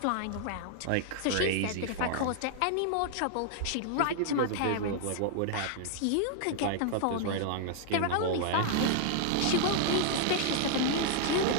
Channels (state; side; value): different; both; correlation -0.01